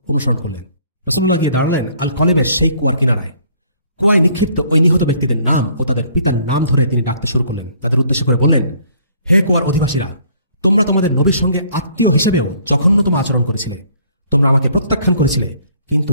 অনুসরণ করলেন। রাসূলুল্লাহ গিয়ে দাঁড়ালেন আল কলিবের সেই কুয়ার কিনারায়। কুয়ায় নিক্ষিপ্ত ওই নিহত ব্যক্তিদের নাম ও তাদের পিতার নাম ধরে তিনি ডাকতে শুরু করলেন। তাদের উদ্দেশ্য করে বললেন, হে কুয়ার অধিবাসীরা, তোমরা তোমাদের নবীর সঙ্গে আত্মীয় হিসাবেও জঘন্যতম আচরণ করেছিলে। তোমরা আমাকে প্রত্যাখ্যান করেছিলে, কিন্তু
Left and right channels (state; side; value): inverted; both; correlation -0.60